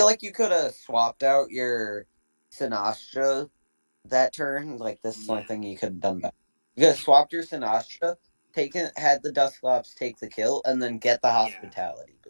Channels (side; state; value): both; inverted; correlation -1.00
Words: like you could have swapped out your Sinastra that turn. Like this is something you could have done better. You could have swapped your Sinastra, had the Dusclops take the kill, and then get the hospitality